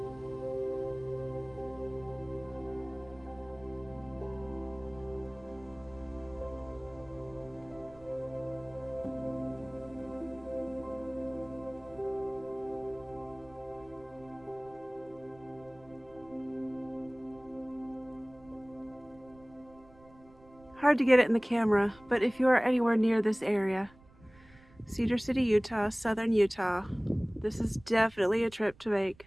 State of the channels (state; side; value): noise; right; rumble, 25 dB below the sound